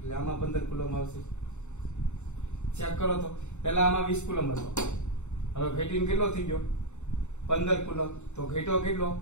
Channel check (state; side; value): late; right; 0.83 ms